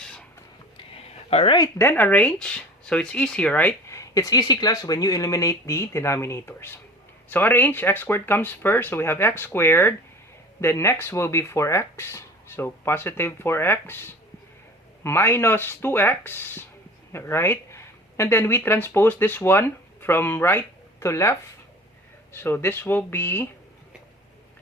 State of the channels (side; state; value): both; normal; correlation 0.41